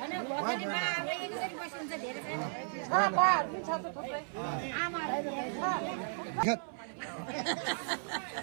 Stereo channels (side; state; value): left; silent; 54 dB below the other